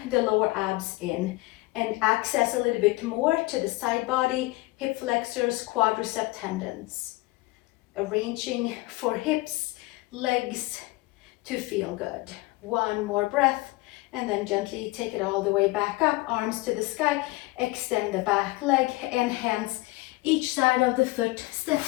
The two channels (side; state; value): right; quieter; 21.3 dB